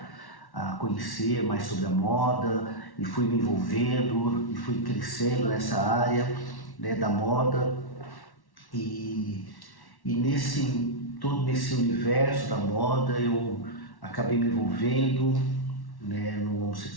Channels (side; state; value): right; late; 1.1 ms